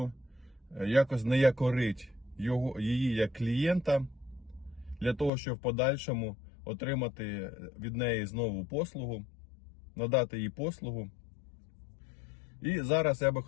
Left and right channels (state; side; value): drops out; right; at 5.3 s